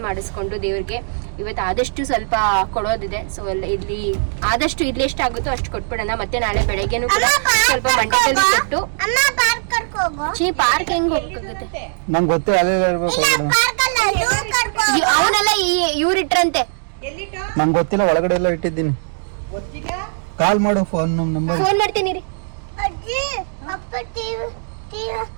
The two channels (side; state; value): left; silent; digital silence